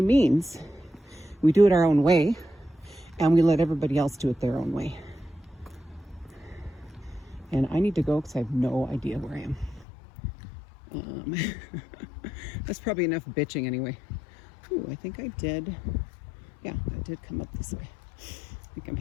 we do it our own way and we let everybody else do it their own way. And I need to go because I have no idea where I am. That's probably enough bitching anyway. Ooh, I think I did. Yeah, I did come up this way. I think I'm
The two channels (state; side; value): drops out; right; at 9.9 s